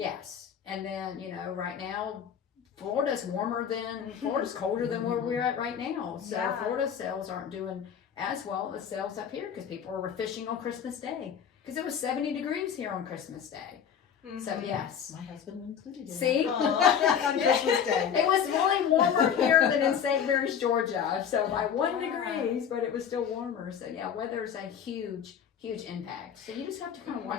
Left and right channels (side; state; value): right; quieter; 8.1 dB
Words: And then, right now, Florida's colder than where we're at right now. So Yeah. Florida sales aren't doing as well as sales up here because people were fishing on Christmas Day. Because it was 70 degrees here on Christmas Day. Mm-hmm. So yes. My husband included. See? On Christmas Day. It was really warmer here than in St. Mary's, Georgia. So by 1 degrees, but it was still warmer. So yeah, weather's a huge, huge impact. So you just have to kind of